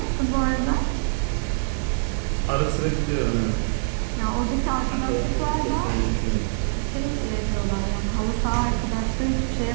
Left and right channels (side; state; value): left; silent; digital silence